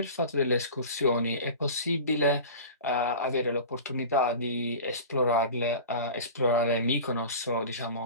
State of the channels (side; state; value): both; inverted; correlation -0.35